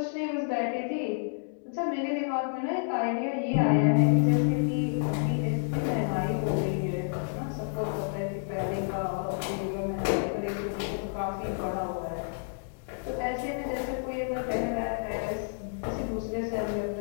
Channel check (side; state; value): right; silent; digital silence